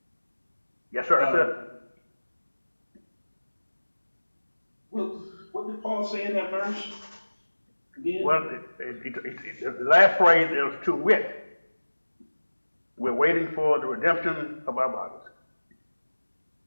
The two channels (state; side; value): inverted; both; correlation -1.00